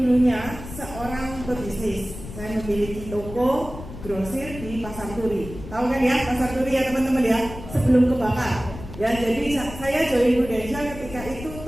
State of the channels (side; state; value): left; noise; rumble, 12 dB below the sound